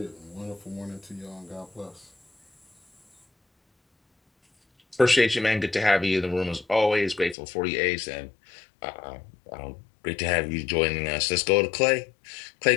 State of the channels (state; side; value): drops out; right; at 7.4 s